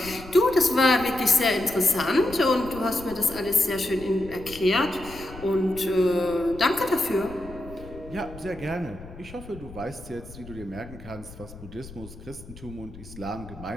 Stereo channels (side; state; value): left; noise; rumble, 16 dB below the sound